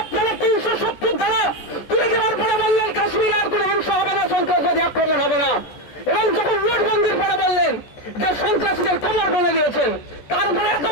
আপনারা 370 ধারা তুলে দেওয়ার পরে বললেন কাশ্মীরে আর কোন হিংসা হবে না, সন্ত্রাসবাদী আক্রমণ হবে না, এবং যখন নোটবন্দির পরে বললেন যে সন্ত্রাসীদের কামড় বলে দিয়েছেন, তারপরে এত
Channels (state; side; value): late; right; 14 ms